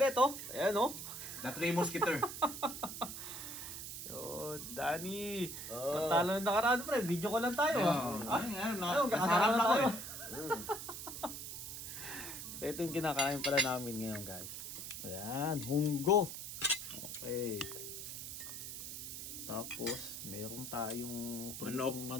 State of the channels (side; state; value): right; noise; hiss, 8 dB below the sound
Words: oh. Ayan, oh. The Three Musketeer. Yun, Danny. Oh. Patalo na nakaraan, pre. Video ko lang tayo. Nasarap lang ako eh. So, ito yung kinakain pala namin ngayon, guys. Ayan, munggo. Okay. Tapos, meron tayong